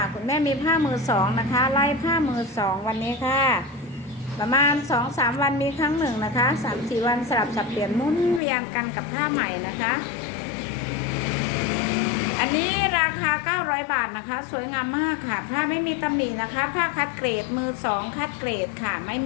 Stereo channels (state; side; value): drops out; right; at 8.4 s